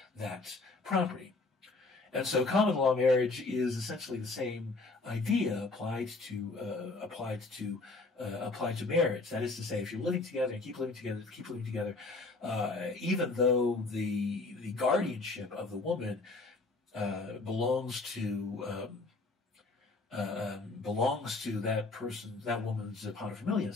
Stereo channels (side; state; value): right; quieter; 3.5 dB